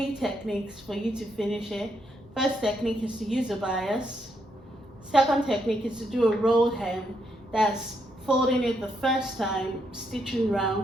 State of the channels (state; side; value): normal; both; correlation 0.78